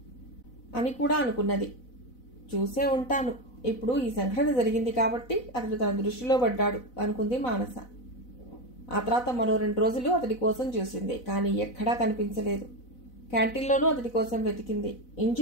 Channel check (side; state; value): right; late; 4.0 ms